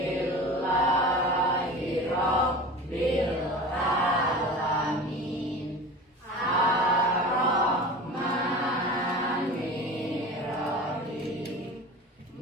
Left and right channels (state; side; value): normal; both; correlation 0.35